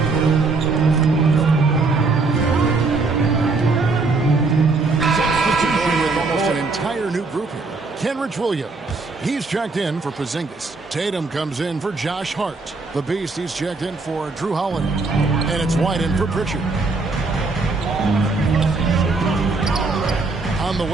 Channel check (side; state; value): left; quieter; 3.8 dB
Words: Kenrich Williams. He's checked in for Porzingis. Tatum comes in for Josh Hart. The Beast, he's checked in for Drew Holiday. And it's White in for Pritchard. On the